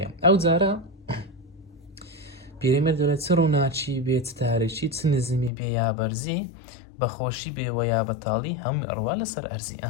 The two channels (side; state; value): right; drops out; at 5.5 s